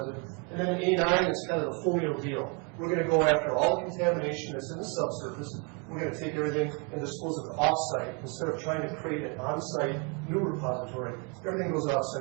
And then A9 is kind of the folio deal. We're going to go after all the contamination that's in the subsurface. We're going to take everything and dispose of it off-site. Instead of trying to create an on-site new repository, everything goes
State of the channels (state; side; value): quieter; left; 34.4 dB